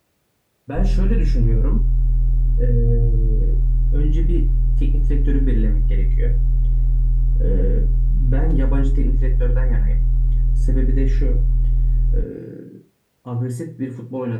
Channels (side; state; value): both; identical; correlation 1.00